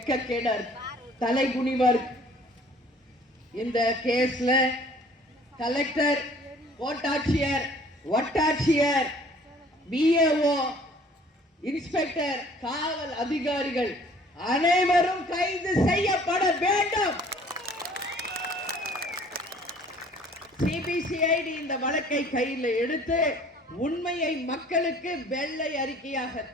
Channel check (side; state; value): both; normal; correlation 0.53